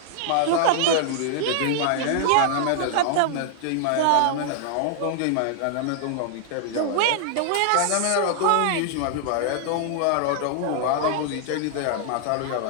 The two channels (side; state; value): both; different; correlation -0.01